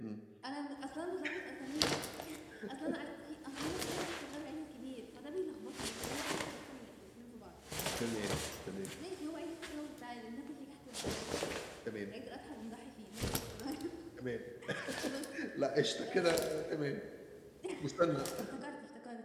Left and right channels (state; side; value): identical; both; correlation 1.00